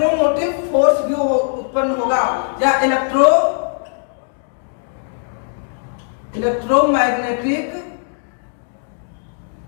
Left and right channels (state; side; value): silent; right; digital silence